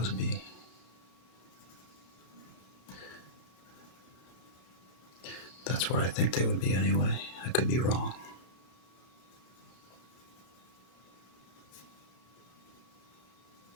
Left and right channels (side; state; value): right; late; 32 ms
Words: be? That's where I think they would be anyway. I could be wrong.